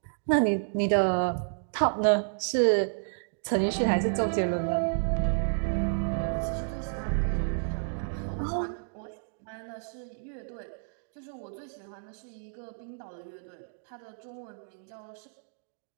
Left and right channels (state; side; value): silent; left; digital silence